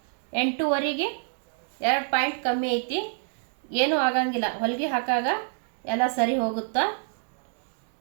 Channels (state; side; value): silent; left; 59 dB below the other